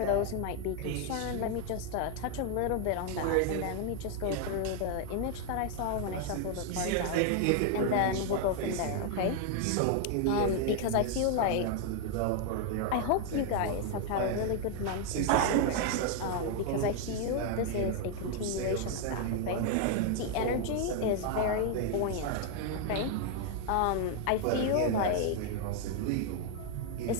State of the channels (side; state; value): both; different; correlation 0.00